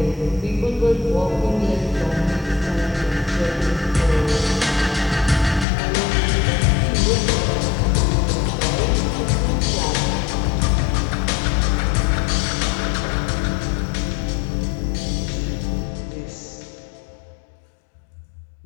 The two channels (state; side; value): drops out; right; at 5.7 s